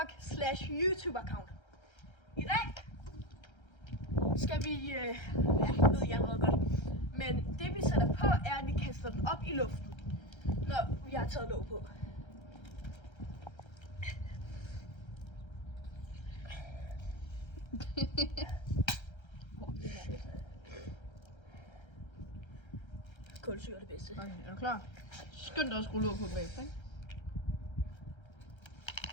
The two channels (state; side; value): late; right; 1.3 ms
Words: I dag skal vi, ved jeg allerede godt, men det vi sætter på er, at vi kaster den op i luften, når vi har taget låg på. Kulsyre er det bedste. Okay, er du klar? Skynd dig at skrue låg på bagefter, ikke?